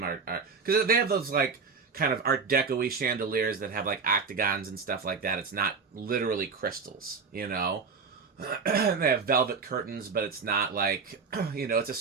are because they have those like kind of Art Deco-y chandeliers that have like octagons and stuff like that. It's not literally crystals, you know? They have velvet curtains, but it's not like, you know, it's a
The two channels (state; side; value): quieter; left; 5.2 dB